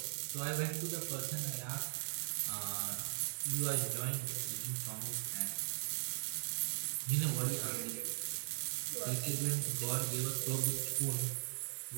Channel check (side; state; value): left; silent; digital silence